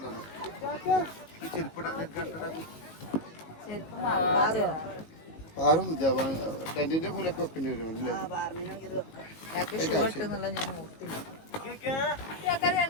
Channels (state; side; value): late; right; 19 ms